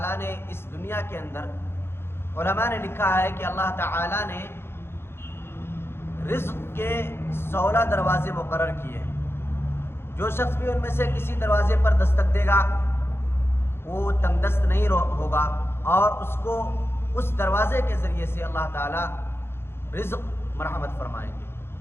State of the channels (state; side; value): late; right; 0.11 ms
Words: نے اس دنیا کے اندر، علماء نے لکھا ہے کہ اللہ تعالی نے رزق کے 16 دروازے مقرر کیے ہیں۔ جو شخص بھی ان میں سے کسی دروازے پر دستک دے گا وہ تنگ دست نہیں ہوگا، اور اس کو اس دروازے کے ذریعے سے اللہ تعالی رزق مرحمت فرمائیں گے۔